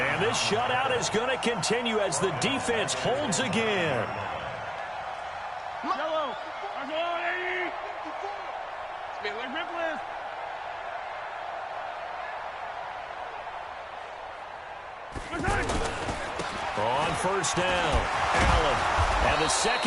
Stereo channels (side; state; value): both; identical; correlation 1.00